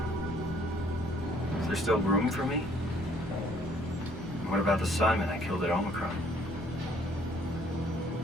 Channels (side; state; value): both; normal; correlation 0.62